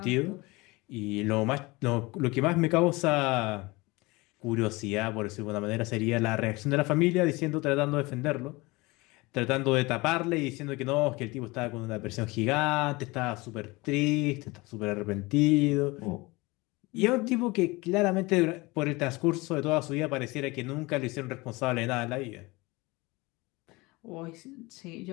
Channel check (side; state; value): right; quieter; 23.3 dB